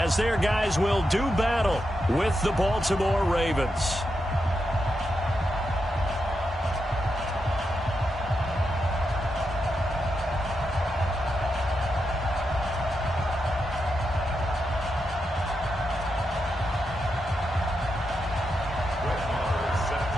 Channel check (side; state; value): both; normal; correlation 0.86